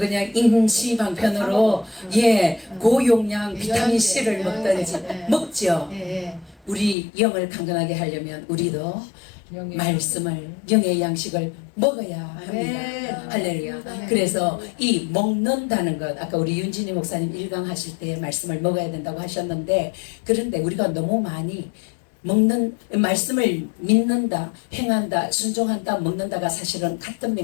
임시방편으로 고용량 비타민 C를 먹든지 먹죠. 우리 영을 강건하게 하려면 우리도 말씀을, 영의 양식을 먹어야 합니다. 할렐루야. 그래서 이 먹는다는 것, 아까 우리 윤진희 목사님 1강 하실 때 말씀을 먹어야 된다고 하셨는데, 그런데 우리가 너무 많이 먹는, 말씀을 믿는다, 행한다, 순종한다, 먹는다가 사실은 같은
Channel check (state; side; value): drops out; right; at 7.0 s